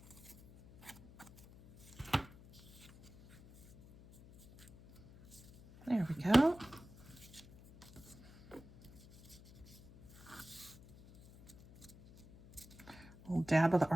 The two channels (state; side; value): noise; left; hum, 20 dB below the sound